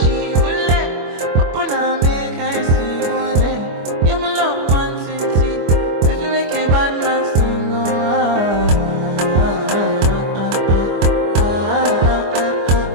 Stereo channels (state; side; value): late; left; 25 ms